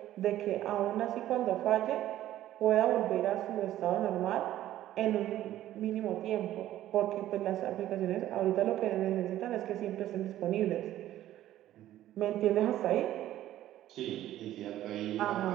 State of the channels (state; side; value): quieter; left; 13.4 dB